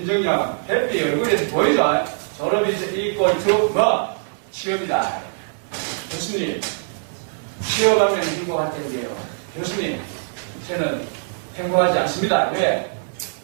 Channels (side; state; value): left; silent; 59 dB below the other